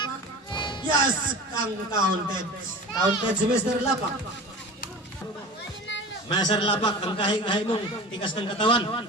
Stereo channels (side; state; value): both; normal; correlation 0.35